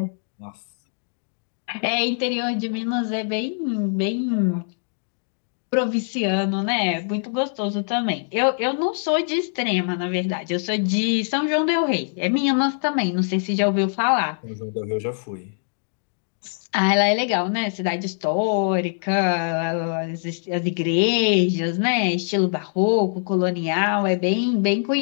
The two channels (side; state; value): right; silent; digital silence